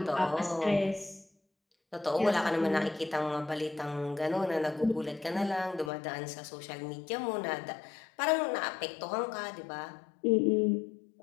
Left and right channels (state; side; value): drops out; right; at 5.9 s